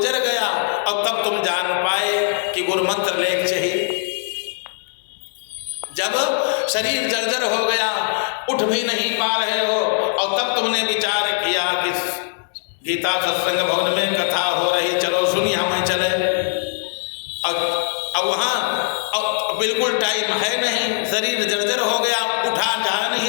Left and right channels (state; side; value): silent; right; 65 dB below the other